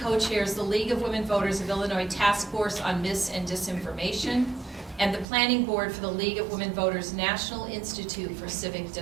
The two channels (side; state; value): left; drops out; at 5.2 s